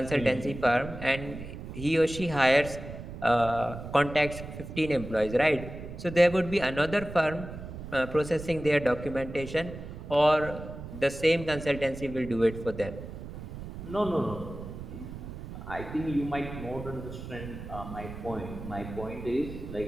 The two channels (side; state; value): right; noise; rumble, 11 dB below the sound